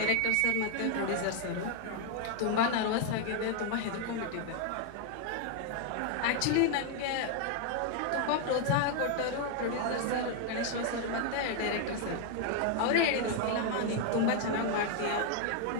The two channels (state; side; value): different; both; correlation 0.00